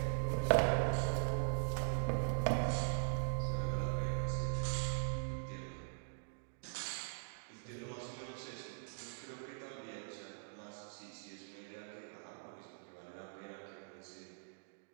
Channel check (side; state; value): left; silent; digital silence